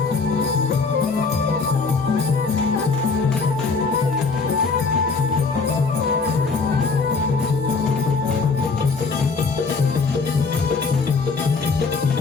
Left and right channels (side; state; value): right; quieter; 4.5 dB